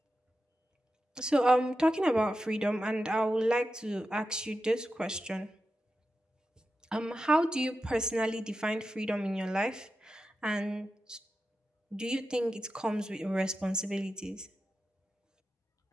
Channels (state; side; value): normal; both; correlation 0.91